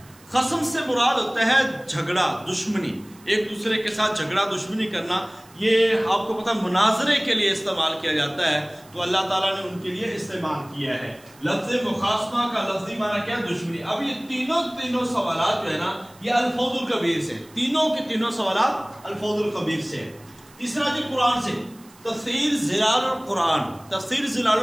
خصم سے مراد ہوتا ہے جھگڑا، دشمنی، ایک دوسرے کے ساتھ جھگڑا دشمنی کرنا۔ یہ آپ کو پتہ مناظرے کے لیے استعمال کیا جاتا ہے، تو اللہ تعالیٰ نے ان کے لیے استعمال کیا ہے۔ لفظ مخاصمہ کا لفظی معنی کیا؟ دشمنی۔ اب یہ تینوں سوالات جو ہے نا یہ الفوز الکبیر سے، تینوں کے تینوں سوالات الفوز الکبیر سے۔ تیسرا جی قرآن سے، تفسیر ظلال القرآن۔ تفسیر ظلال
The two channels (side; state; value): right; noise; hiss, 26 dB below the sound